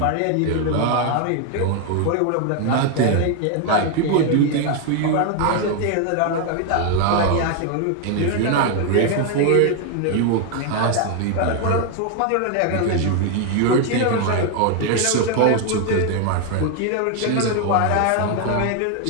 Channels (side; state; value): both; different; correlation 0.01